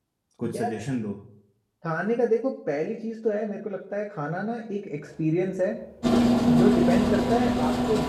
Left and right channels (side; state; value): both; identical; correlation 1.00